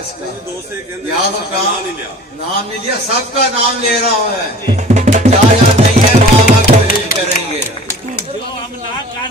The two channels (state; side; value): normal; both; correlation 0.44